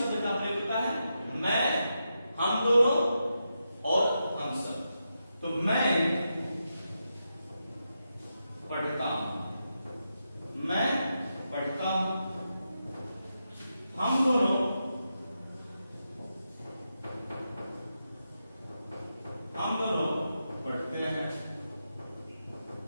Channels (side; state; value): both; inverted; correlation -0.87